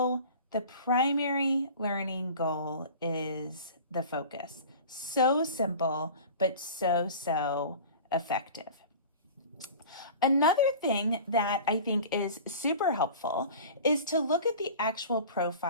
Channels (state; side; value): inverted; both; correlation -0.39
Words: the primary learning goal is the focus. So simple, but so effective. Another thing that I think is super helpful is to look at the actual